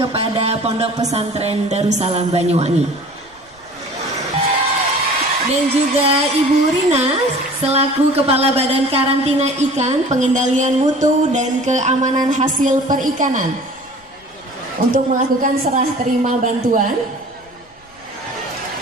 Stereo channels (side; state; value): left; noise; rumble, 30 dB below the sound